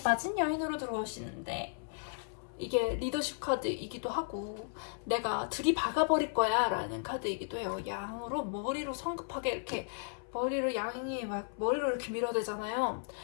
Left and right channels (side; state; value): right; silent; 55 dB below the other